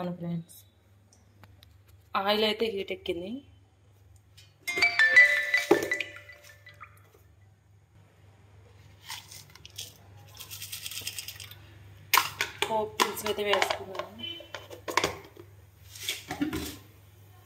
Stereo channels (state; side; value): identical; both; correlation 1.00